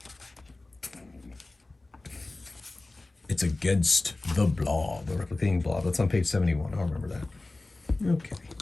It's against the blob, the replicating blob. That's on page 71. I'll remember that. Okay.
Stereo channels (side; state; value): right; quieter; 3.0 dB